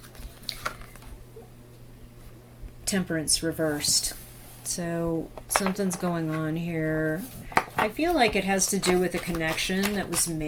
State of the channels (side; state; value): both; identical; correlation 1.00